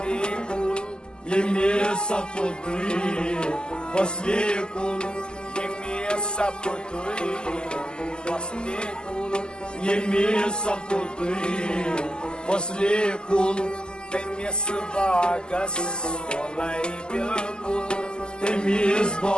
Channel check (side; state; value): right; late; 0.046 ms